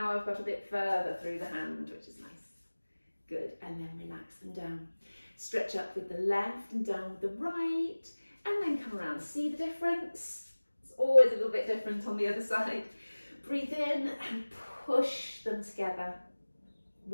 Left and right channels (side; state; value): both; inverted; correlation -1.00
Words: I've got a bit further through the hand, which is nice. Good, and then relax them down. Stretch up with the left and down with the right, and then come around. See the difference? It's always a little bit different on the other side. Breathe in and push them together.